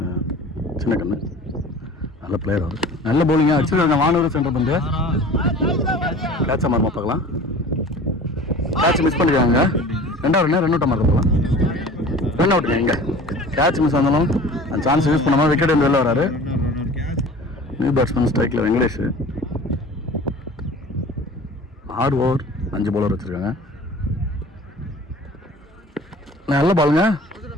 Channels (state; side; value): normal; both; correlation 0.42